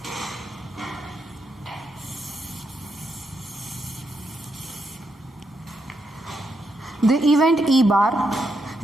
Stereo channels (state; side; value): normal; both; correlation 0.81